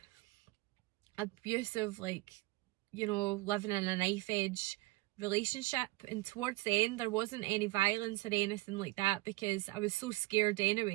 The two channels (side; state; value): left; quieter; 20.9 dB